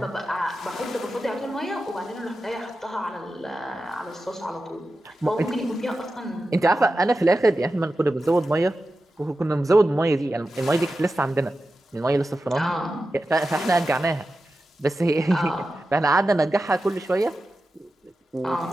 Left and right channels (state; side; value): normal; both; correlation 0.92